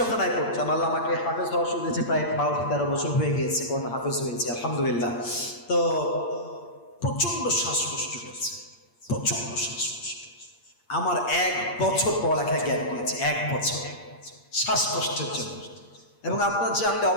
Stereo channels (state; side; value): late; right; 8.6 ms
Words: পড়তাম, আল্লাহ আমাকে হাফেজ হওয়ার সুযোগ দিয়েছে, প্রায় 12-13 বছর হয়ে গিয়েছে, কোন হাফেজ হয়েছে আলহামদুলিল্লাহ। তো প্রচন্ড শ্বাসকষ্ট হয়েছে, প্রচন্ড শ্বাসকষ্ট। আমার 1 বছর পড়ালেখায় গ্যাপ নিয়েছে, 1 বছর শ্বাসকষ্টের জন্য। এবং আপনার জানলে